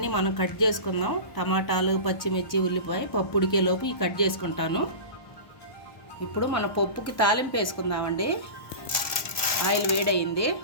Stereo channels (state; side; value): late; right; 1.2 ms